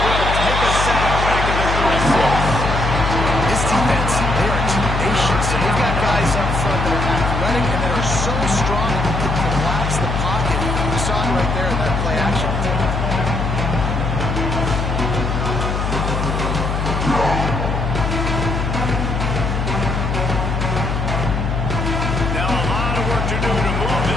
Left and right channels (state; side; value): noise; left; hum, 1 dB below the sound